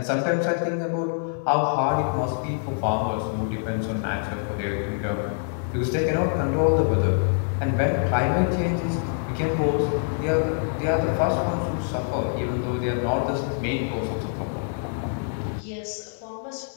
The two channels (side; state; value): right; silent; 62 dB below the other